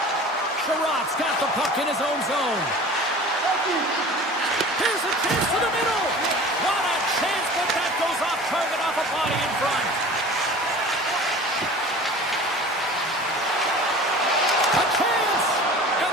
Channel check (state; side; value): normal; both; correlation 0.40